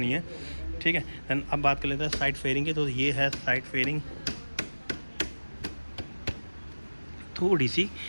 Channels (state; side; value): inverted; both; correlation -1.00